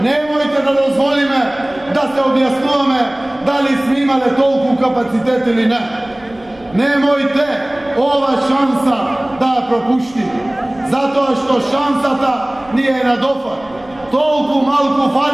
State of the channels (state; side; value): noise; right; rumble, 26 dB below the sound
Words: Немојте да дозволиме да се објаснуваме дали сме имале толку капацитет или не. Немојте ова шанса да ја пропуштиме, затоа што шансата ни е на дофат. Толку малку